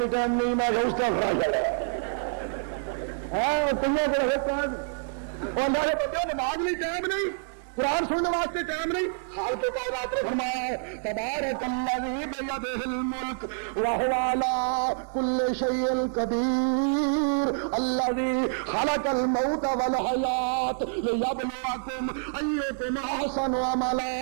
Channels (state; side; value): silent; left; 55 dB below the other